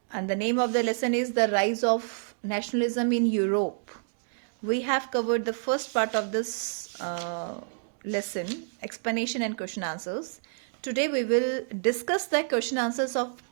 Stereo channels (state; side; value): silent; left; digital silence